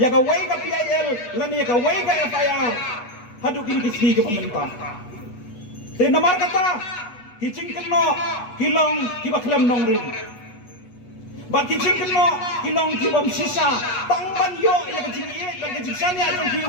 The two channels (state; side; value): late; right; 8.2 ms